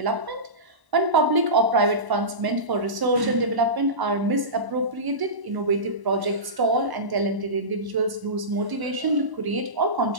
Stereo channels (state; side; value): late; left; 1.0 ms